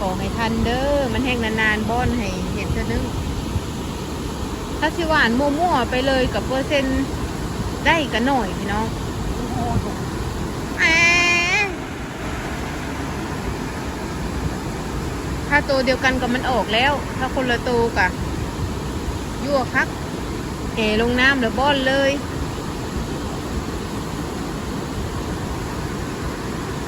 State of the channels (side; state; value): both; identical; correlation 1.00